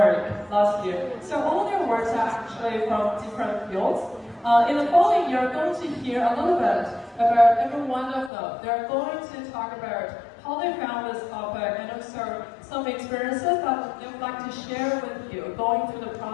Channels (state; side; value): drops out; right; at 8.3 s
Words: last year. So all their works are actually from different fields. In the following, you're going to hear a little bit about every one of them. They're going to talk about how they found this topic and also some experiences that they would like to share with you going through the